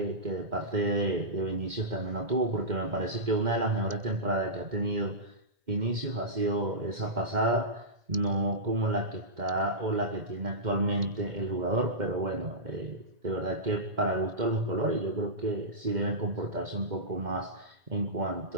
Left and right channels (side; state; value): left; late; 2.1 ms